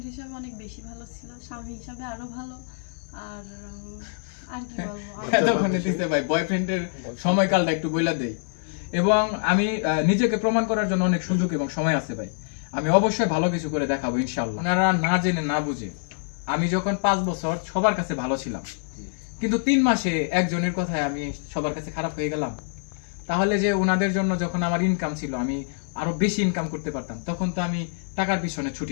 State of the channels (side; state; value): right; silent; 61 dB below the other